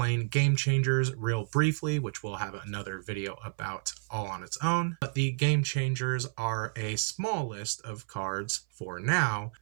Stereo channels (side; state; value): left; silent; 57 dB below the other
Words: game changers real briefly, which we'll have another video about all on its own. But the game changers are a small list of cards for now